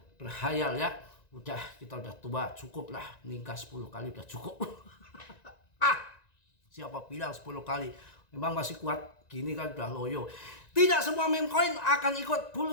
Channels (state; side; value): late; right; 1.9 ms